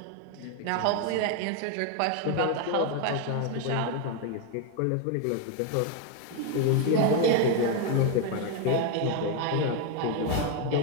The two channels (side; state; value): both; different; correlation 0.01